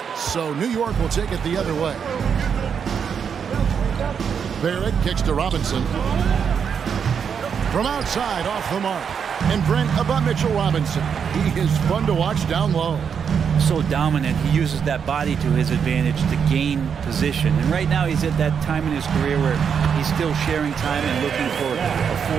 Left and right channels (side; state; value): left; quieter; 7.0 dB